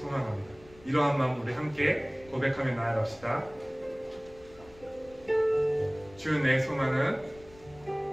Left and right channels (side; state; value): left; noise; rumble, 23 dB below the sound